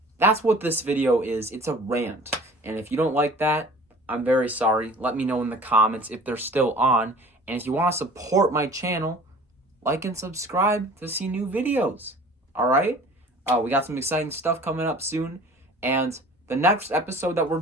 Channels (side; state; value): both; normal; correlation 0.46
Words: that's what this video is. It's a rant. And if you don't like that, I'm very sorry. Let me know in the comments if they're still on. And if you want to support my channel, like and subscribe to see new videos. Alright? We got some exciting stuff coming up soon. And the next episode that we're